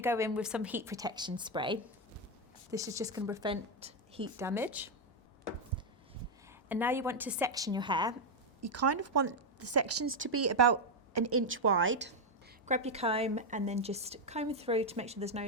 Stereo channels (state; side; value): normal; both; correlation 0.03